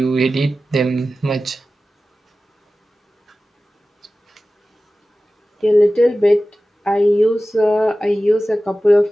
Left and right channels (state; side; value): normal; both; correlation 0.95